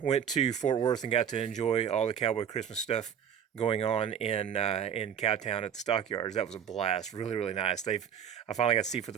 went to Fort Worth and got to enjoy all the Cowboy Christmas stuff going on in Cowtown at the stockyards. That was a blast, really really nice. I finally got to see for the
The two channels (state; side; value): quieter; left; 8.5 dB